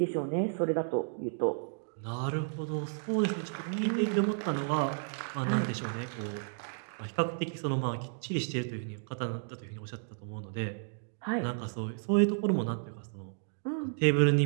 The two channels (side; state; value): left; silent; digital silence